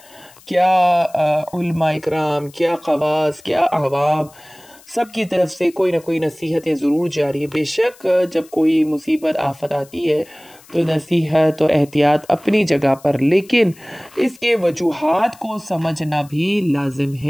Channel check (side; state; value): left; noise; hiss, 25 dB below the sound